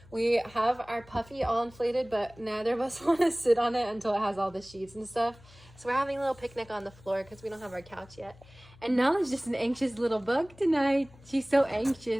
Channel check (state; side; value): noise; left; hum, 24 dB below the sound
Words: We have our puffy all inflated, but neither of us want to sit on it until it has all the sheets and stuff. So we're having a little picnic on the floor because we don't have our couch yet. And Nala's just an anxious little bug tonight. She's so